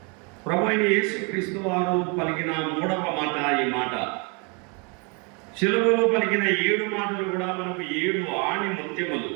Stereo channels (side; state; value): left; quieter; 33.0 dB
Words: ప్రభువైన యేసుక్రీస్తు వారు పలికిన మూడవ మాట ఈ మాట. శిలువలో పలికిన 7 మాటలు కూడా మనకు 7 ఆణి ముత్యములు,